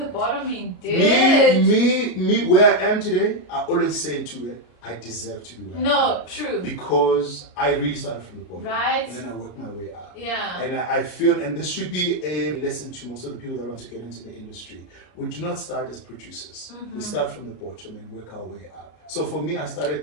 bottom indeed. Me, where I am today, I always say to it, I deserve to be where I am. No, true. Because I really started from the bottom. Right. And then I worked my way up. Yeah. And I feel, and this should be a lesson to most of the people that want to get into the industry. We do not start as producers. We start from the bottom and work our way up. So for me, I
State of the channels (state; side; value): late; right; 33 ms